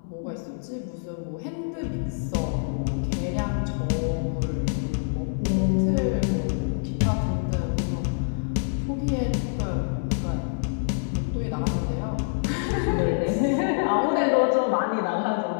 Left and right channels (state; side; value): silent; right; digital silence